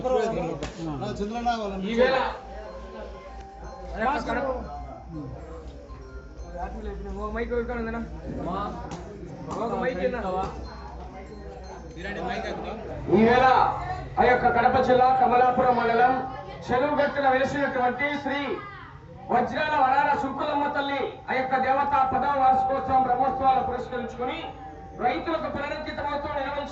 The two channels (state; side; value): identical; both; correlation 1.00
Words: ఈవేళ ఆ యొక్క కడప జిల్లా కమలాపురం మండలం చెరువుగట్టున వెలిసినటువంటి శ్రీ వజ్రాల వరాల సుంకులమ్మ తల్లి ఆ యొక్క దేవత 10వ వార్షికోత్సవం బ్రహ్మోత్సవాలు పురస్కరించుకుని రైతులకు పునరుద్ధృతమవుతూ